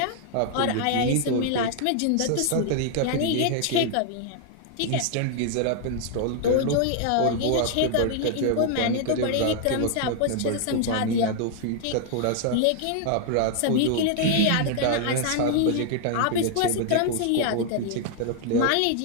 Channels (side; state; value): both; different; correlation 0.00